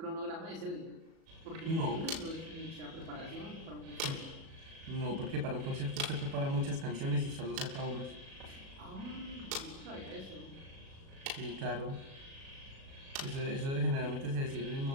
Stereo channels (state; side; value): late; left; 37 ms